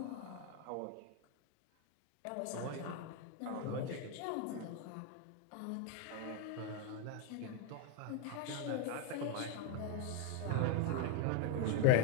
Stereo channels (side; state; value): both; different; correlation 0.00